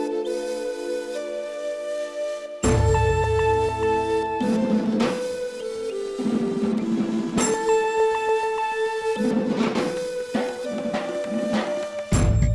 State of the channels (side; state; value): both; identical; correlation 1.00